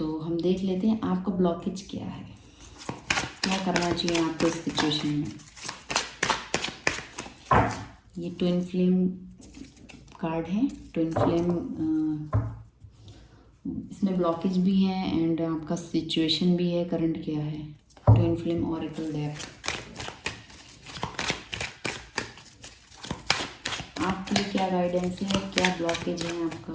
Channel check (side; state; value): both; identical; correlation 1.00